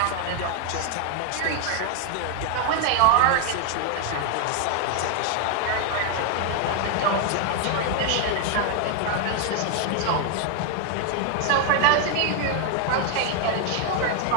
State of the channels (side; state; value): both; different; correlation 0.00